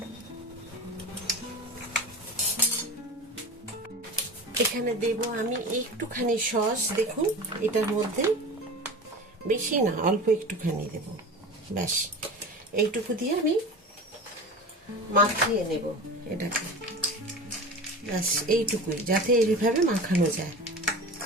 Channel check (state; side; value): normal; both; correlation 0.33